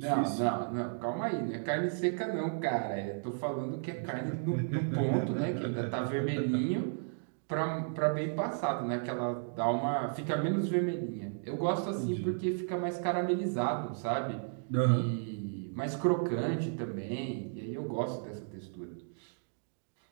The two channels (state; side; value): silent; left; digital silence